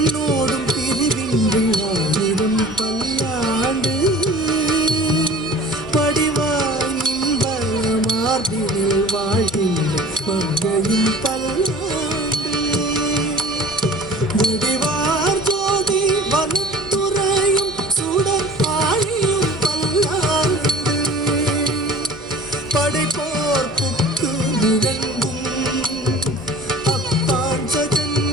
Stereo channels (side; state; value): right; noise; hum, 27 dB below the sound